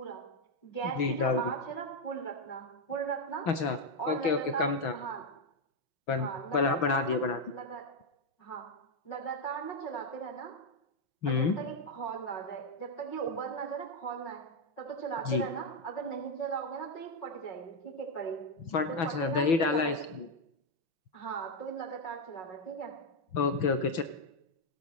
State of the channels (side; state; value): right; late; 6.1 ms